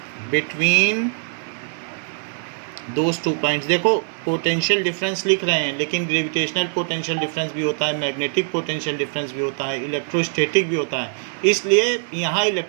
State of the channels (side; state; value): left; silent; 64 dB below the other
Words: between those 2 points. देखो पोटेंशियल डिफरेंस लिख रहे हैं, लेकिन ग्रेविटेशनल पोटेंशियल डिफरेंस भी होता है, मैग्नेटिक पोटेंशियल डिफरेंस भी होता है, इलेक्ट्रोस्टैटिक भी होता है. इसलिए यहाँ